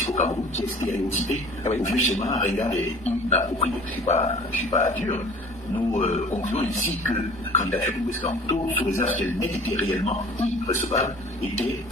au Cameroun, qui est stéréotypée au vieux schéma ringard et inapproprié. Je suis pas dur. Nous concluons ici que la candidature de Moïse Kamto, sous réserve qu'elle n'ait été réellement irrecevable, était,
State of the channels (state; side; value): normal; both; correlation 0.46